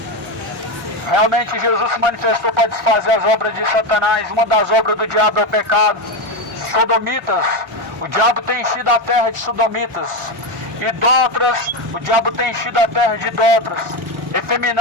Realmente Jesus se manifestou para desfazer as obras de Satanás. Uma das obras do diabo é o pecado. Sodomitas, o diabo tem enchido a terra de sodomitas. Idólatras, o diabo tem enchido a terra de idólatras.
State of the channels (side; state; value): both; normal; correlation 0.13